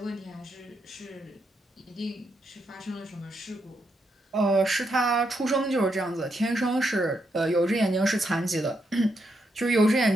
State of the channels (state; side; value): normal; both; correlation 0.80